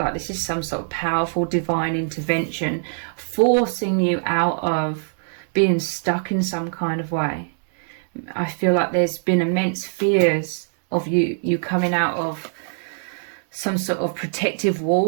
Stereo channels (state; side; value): silent; left; 63 dB below the other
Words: this is some sort of powerful divine intervention forcing you out of being stuck in some kind of way. I feel like there's been immense fears of you coming out of some sort of protective